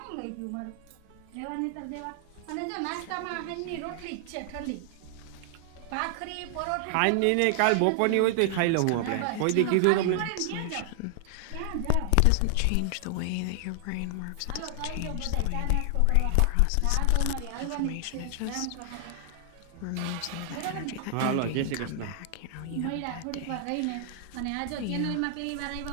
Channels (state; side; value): different; both; correlation 0.00